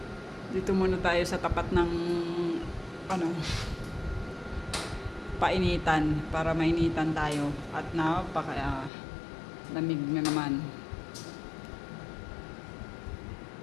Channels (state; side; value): drops out; right; at 8.9 s